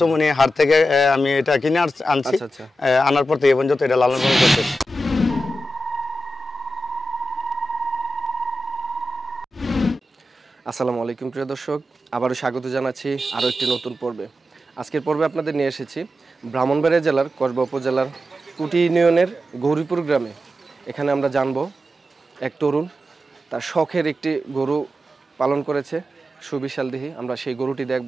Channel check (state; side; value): normal; both; correlation 0.91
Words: হাট থেকে আমি এটা কিনে আনছি। আনার পর থেকে এই পর্যন্ত এটা লালন পালন করতেছি। আসসালামু আলাইকুম প্রিয় দর্শক, আবারও স্বাগত জানাচ্ছি আরও একটি নতুন পর্বে। আজকের পর্বে আপনাদের নিয়ে এসেছি ব্রাহ্মণবাড়িয়া জেলার কসবা উপজেলার কুটি ইউনিয়নের গৌরীপুর গ্রামে। এখানে আমরা জানবো এক তরুণ তার শখের একটি গরু পালন করেছে, সুবিশালদেহী। আমরা সেই গরুটি